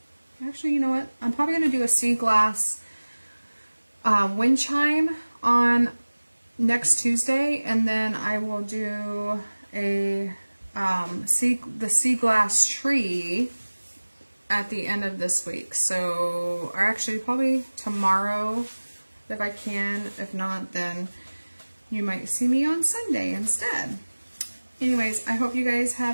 actually, you know what? I'm probably going to do a sea glass wind chime on next Tuesday, and then I will do a the sea glass tree at the end of this week. So, or actually probably tomorrow if I can. If not, then you might see me on Sunday instead. Anyways, I hope you guys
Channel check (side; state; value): both; inverted; correlation -1.00